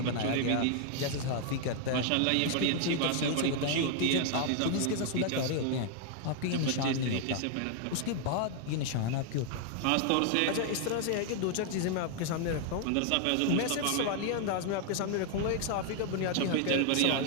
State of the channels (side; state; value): both; different; correlation 0.00